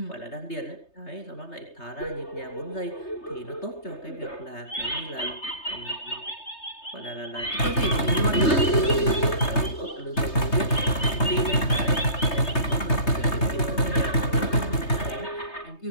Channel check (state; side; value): late; right; 3.3 ms